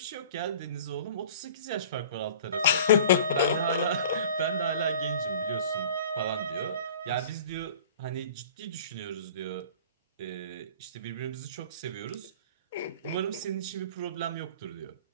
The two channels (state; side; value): inverted; both; correlation -0.45